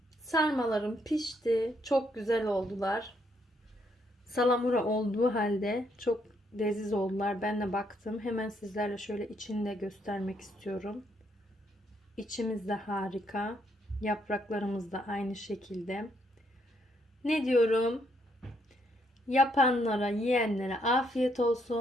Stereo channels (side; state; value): both; normal; correlation 0.73